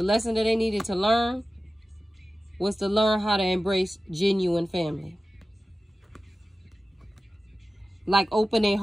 they needed to learn was to learn how to embrace genuine family. Like open their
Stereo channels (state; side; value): normal; both; correlation 0.95